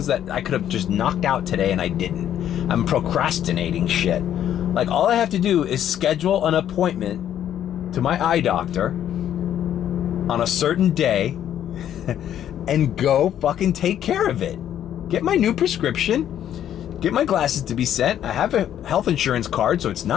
that I could have just knocked out today and I didn't. I'm procrastinating shit. Like, all I have to do is schedule an appointment to my eye doctor on a certain day and go fucking take care of it. Get my new prescription, get my glasses to be sent. I have a health insurance card, so it's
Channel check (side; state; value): right; quieter; 10.6 dB